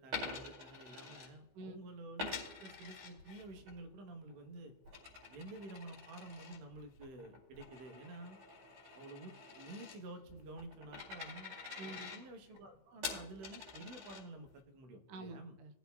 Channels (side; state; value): left; late; 15 ms